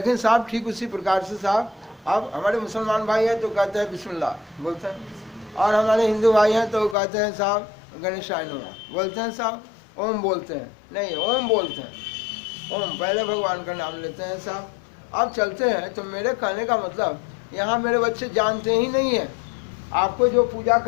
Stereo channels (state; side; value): drops out; right; at 7.0 s